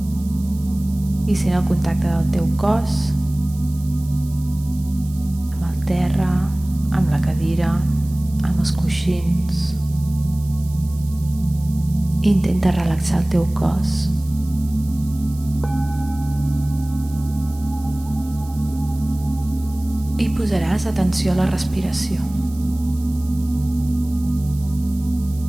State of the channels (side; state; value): right; noise; hiss, 21 dB below the sound